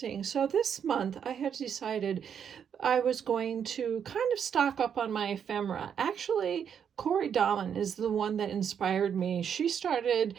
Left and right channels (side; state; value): left; quieter; 7.9 dB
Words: So this month I had decided I was going to kind of stock up on my ephemera. Actually, Corey Dahlman is the one that inspired me. She started